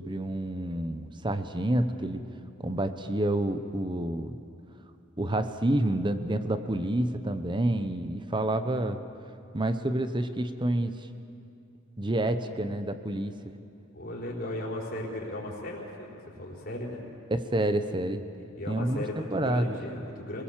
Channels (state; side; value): normal; both; correlation 0.75